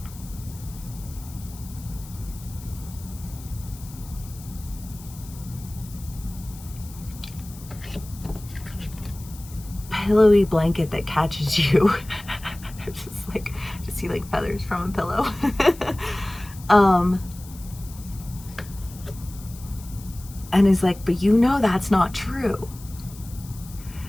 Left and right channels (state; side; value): noise; left; hiss, 19 dB below the sound